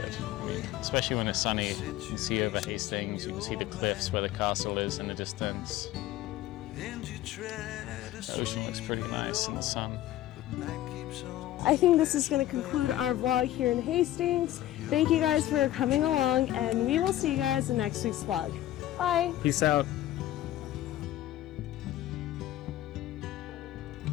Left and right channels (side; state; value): right; quieter; 14.0 dB